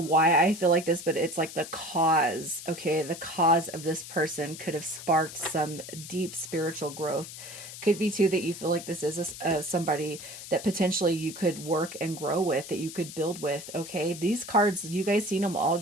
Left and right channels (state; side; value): noise; left; hiss, 12 dB below the sound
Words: I feel like this, but it's like the cause, okay? The cause of this person could have sparked some deep spiritual growth. Could be too that you feel like this is somebody that potentially you could work and grow with, that you could build with, okay? These cards, you guys seen them all